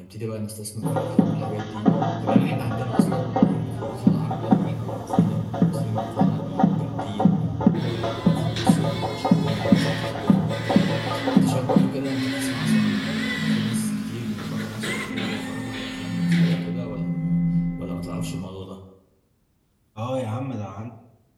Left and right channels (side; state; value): both; identical; correlation 1.00